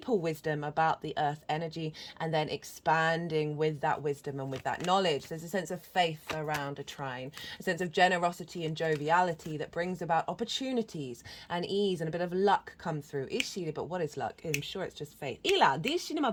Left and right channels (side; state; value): both; identical; correlation 1.00